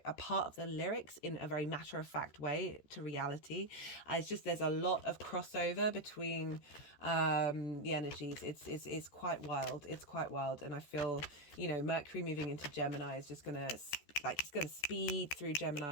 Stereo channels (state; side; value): late; right; 14 ms